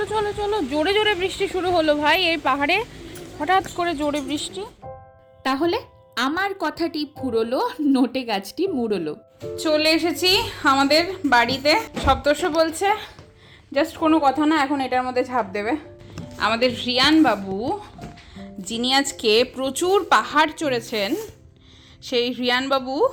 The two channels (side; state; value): both; identical; correlation 1.00